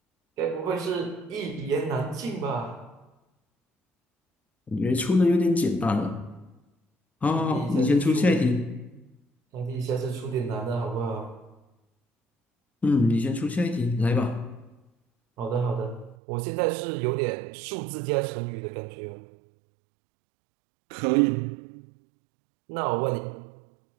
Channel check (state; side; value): drops out; left; at 16.2 s